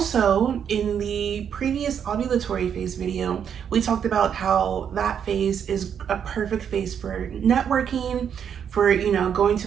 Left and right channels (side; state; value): left; quieter; 8.1 dB